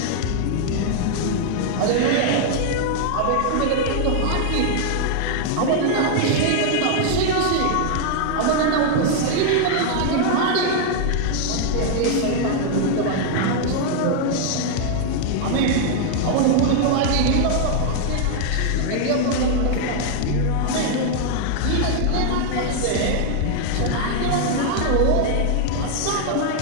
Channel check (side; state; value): both; different; correlation 0.00